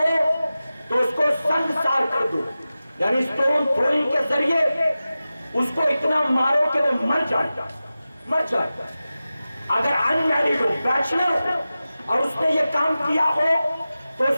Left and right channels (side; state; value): both; inverted; correlation -0.95